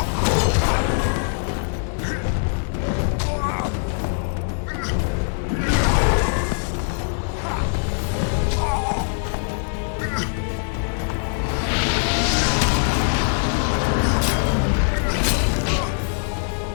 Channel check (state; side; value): silent; right; 64 dB below the other